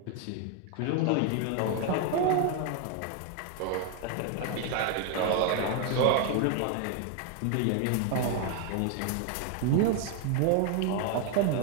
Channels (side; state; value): both; different; correlation 0.01